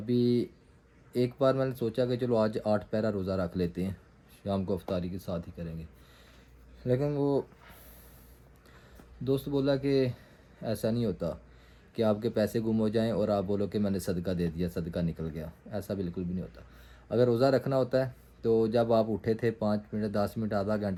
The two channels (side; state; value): both; identical; correlation 1.00